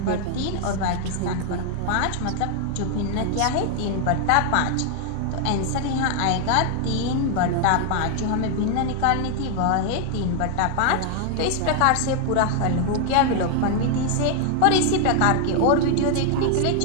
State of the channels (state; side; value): different; both; correlation 0.00